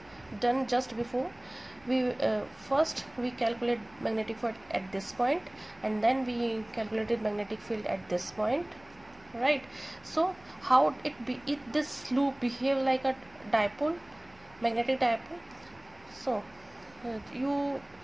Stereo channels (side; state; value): right; noise; hum, 28 dB below the sound